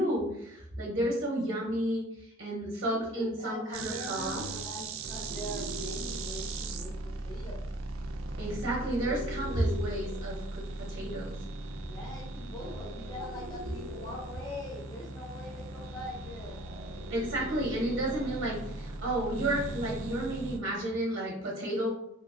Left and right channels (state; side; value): normal; both; correlation 0.52